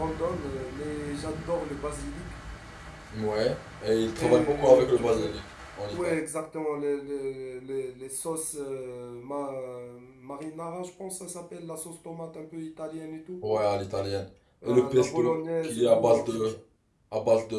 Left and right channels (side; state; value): both; identical; correlation 1.00